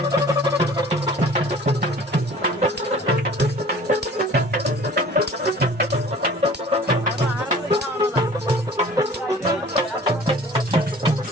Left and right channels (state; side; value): normal; both; correlation 0.47